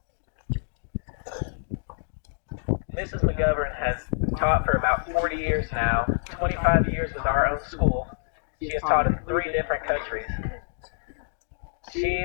Mrs. McGovern has taught for about 40 years now, 25 years with our own school. She has taught in 3 different countries. She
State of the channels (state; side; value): silent; right; digital silence